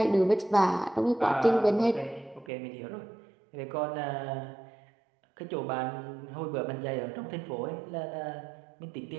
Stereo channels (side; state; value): left; drops out; at 2.5 s